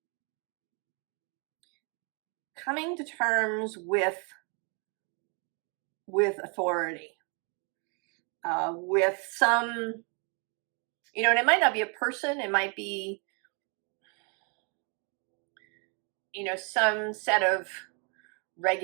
Coming to terms with authority, with some, you know, and it might not be a person, it might be, you know, some set of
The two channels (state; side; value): quieter; left; 35.6 dB